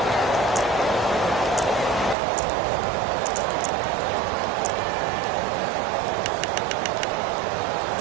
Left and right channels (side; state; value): left; drops out; at 2.1 s